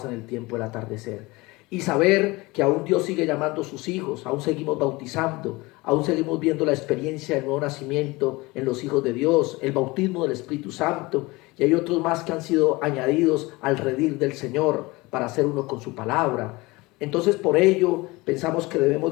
en el tiempo del atardecer. Y saber que aún Dios sigue llamando a sus hijos, aún seguimos bautizando, aún seguimos viendo la experiencia del nuevo nacimiento en los hijos de Dios, el bautismo del Espíritu Santo, y hay otros más que han sido añadidos al redil del Señor para hacer uno con su palabra. Entonces por ello pensamos que debemos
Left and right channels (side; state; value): right; quieter; 22.6 dB